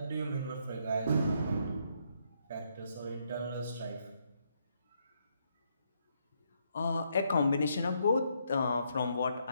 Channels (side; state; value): both; inverted; correlation -0.75